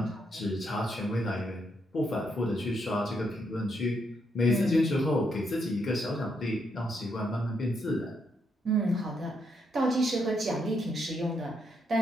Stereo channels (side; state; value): both; normal; correlation 0.77